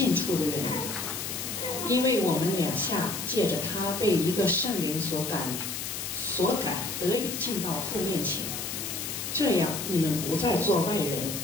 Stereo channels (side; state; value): left; noise; hiss, 5 dB below the sound